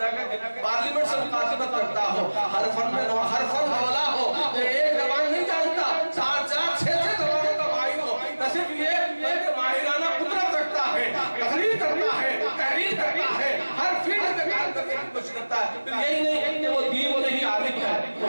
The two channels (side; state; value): both; inverted; correlation -1.00